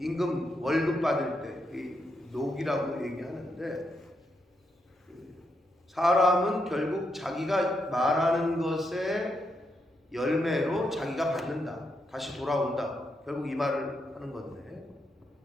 월급 받을 때 녹이라고 얘기하는데, 사람은 결국 자기가 말하는 것의 열매로 자기가 받는다. 다시 돌아온다. 결국 이 말을 하는 건데,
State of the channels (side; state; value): both; normal; correlation 0.81